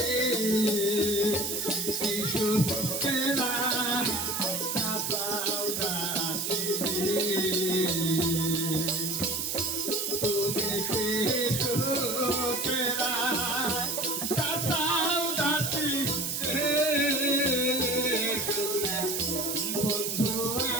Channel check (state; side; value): noise; right; hiss, 2 dB below the sound